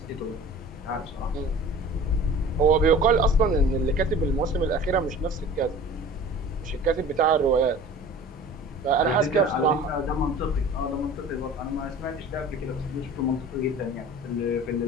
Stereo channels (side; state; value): both; normal; correlation 0.42